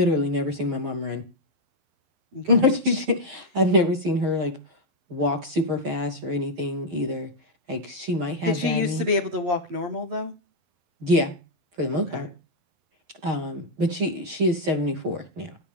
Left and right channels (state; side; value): late; left; 11 ms